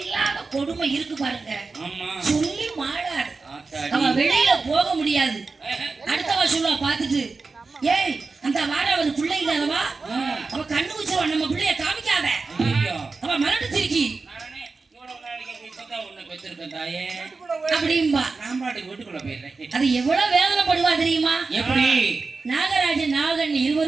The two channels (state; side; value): quieter; left; 4.1 dB